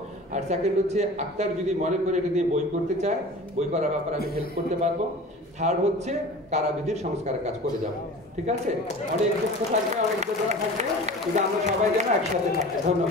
আর সেকেন্ড হচ্ছে আক্তার যদি মনে করে এটা দিয়ে বই করতে চায়, বই করার ব্যাপারে আমি হেল্প করতে পারবো। থার্ড হচ্ছে কারাবিধির সংস্কারের কাজ করে যাব। ঠিক আছে, অনেক দুঃখ থাকবে, অনেক বেদনা থাকবে, কিন্তু আমরা সবাই যেন একসাথে থাকবো।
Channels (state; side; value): normal; both; correlation 0.39